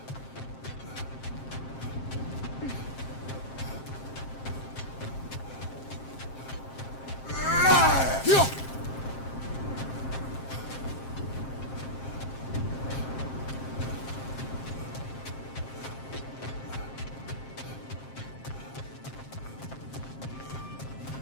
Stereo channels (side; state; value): right; late; 7.6 ms